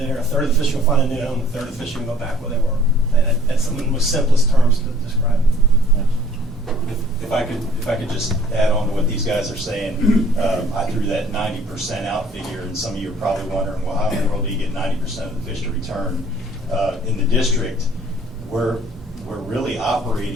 a third of the fish are going to find a new home, a third of the fish are going to go back where they were. And that's some of the most simplest terms to describe it. If I could just add on to what these guys are saying, I threw that 90% out figure, and some of you are probably wondering, well, how in the world do you get 90% of the fish to return? In the district, we're really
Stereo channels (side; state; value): both; normal; correlation 0.55